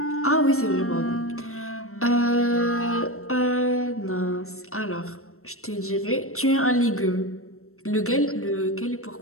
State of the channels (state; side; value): late; right; 0.63 ms